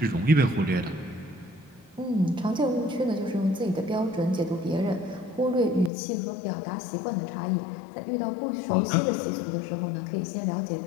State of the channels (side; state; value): right; drops out; at 5.9 s